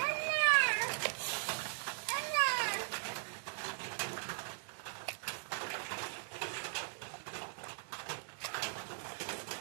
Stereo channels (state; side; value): silent; left; digital silence